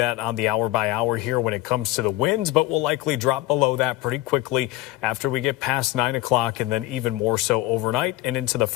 on the hour by hour here when it comes to the winds, but we'll likely drop below that pretty quickly after we get past 9 o'clock, and then even more so overnight and into the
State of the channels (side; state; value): right; quieter; 17.1 dB